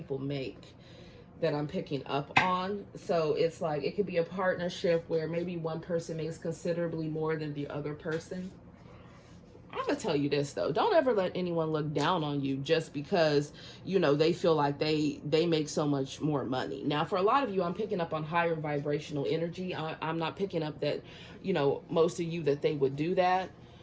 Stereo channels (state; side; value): identical; both; correlation 1.00